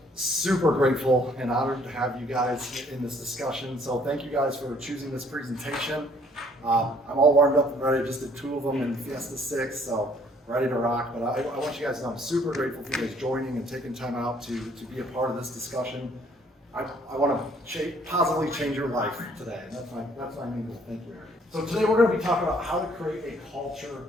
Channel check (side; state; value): both; normal; correlation 0.61